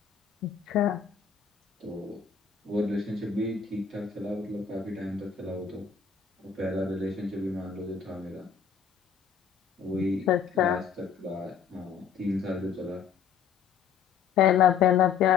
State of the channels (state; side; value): quieter; right; 7.1 dB